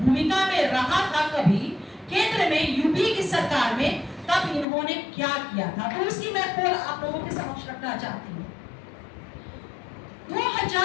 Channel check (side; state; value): right; drops out; at 4.7 s